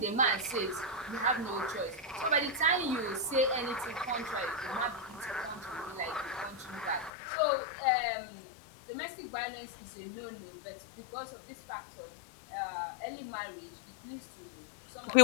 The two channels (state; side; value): drops out; right; at 7.1 s